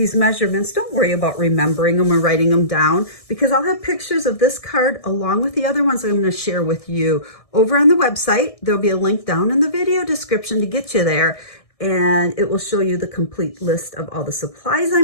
measurements, don't worry about remembering them or writing them down because I'll have pictures of this card along with the other ones I'm going to share with you over on the website. There'll be a link down in the video description to get you there, and it will show you the complete list of all the supplies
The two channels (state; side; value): late; right; 1.6 ms